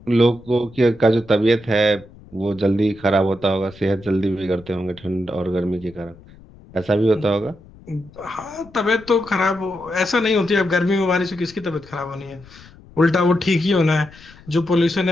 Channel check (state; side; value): noise; left; rumble, 23 dB below the sound